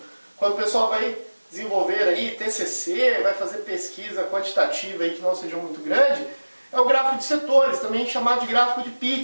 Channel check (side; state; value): both; inverted; correlation -1.00